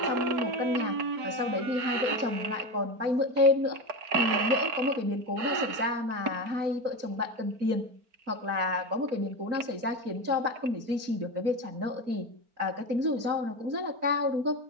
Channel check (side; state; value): left; late; 4.4 ms